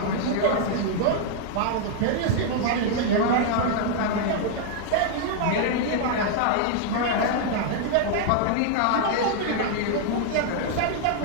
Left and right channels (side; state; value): both; different; correlation 0.00